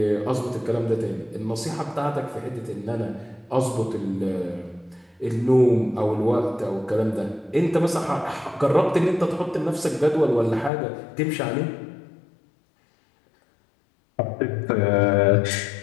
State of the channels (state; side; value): drops out; right; at 10.7 s